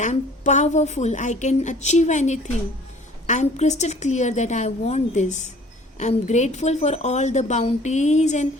I am powerful, I can achieve anything, I am crystal clear that I want this, I am grateful for all the bounties and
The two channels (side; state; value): both; normal; correlation 0.51